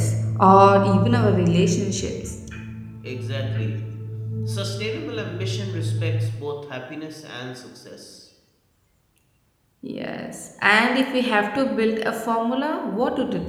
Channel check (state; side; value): identical; both; correlation 1.00